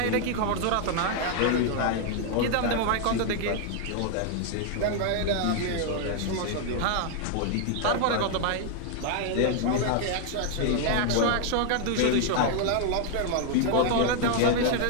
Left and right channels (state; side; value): different; both; correlation 0.00